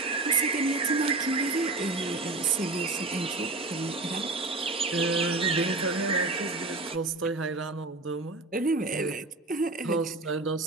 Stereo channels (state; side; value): quieter; left; 3.2 dB